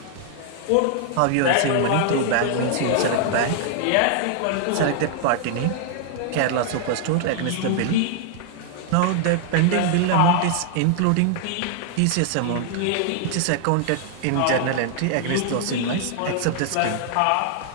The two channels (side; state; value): both; different; correlation 0.00